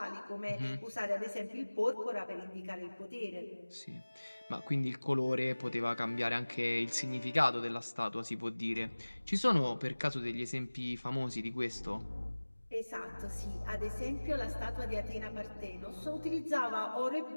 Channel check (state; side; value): inverted; both; correlation -1.00